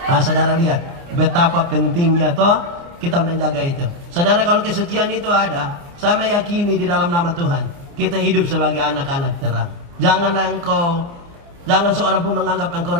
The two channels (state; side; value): late; left; 29 ms